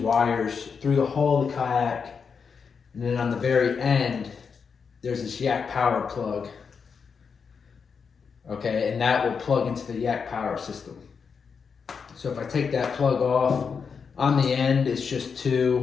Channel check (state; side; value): quieter; right; 5.9 dB